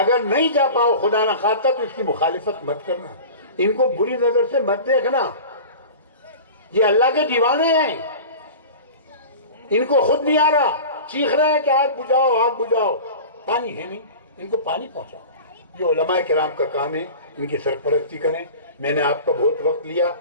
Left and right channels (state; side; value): inverted; both; correlation -0.36